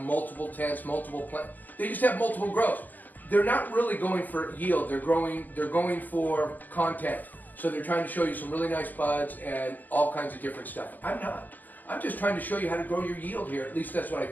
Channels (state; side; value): late; right; 0.084 ms